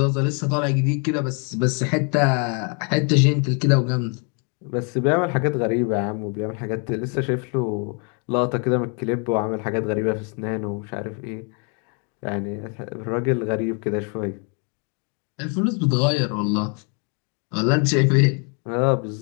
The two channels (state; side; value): quieter; right; 38.4 dB